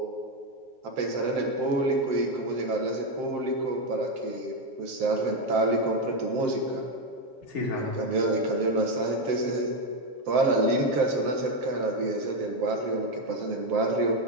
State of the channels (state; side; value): late; left; 7.7 ms